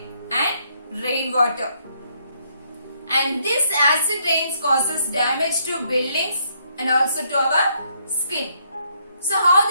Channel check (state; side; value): inverted; both; correlation -0.72